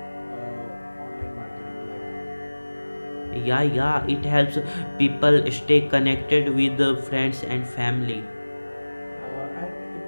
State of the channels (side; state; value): both; inverted; correlation -1.00